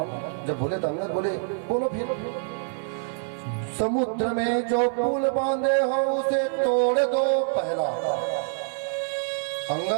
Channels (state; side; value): silent; left; 55 dB below the other